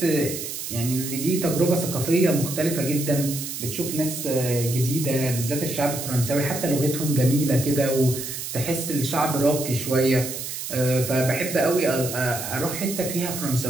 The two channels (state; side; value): noise; right; hiss, 6 dB below the sound